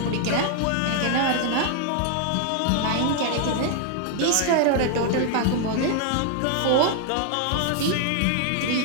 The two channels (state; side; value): different; both; correlation 0.00